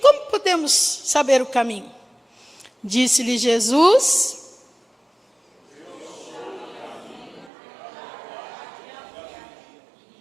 podemos saber o caminho? Disse-lhe Jesus,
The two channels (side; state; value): left; drops out; at 7.5 s